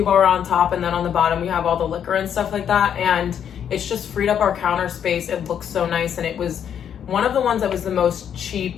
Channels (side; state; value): right; quieter; 8.7 dB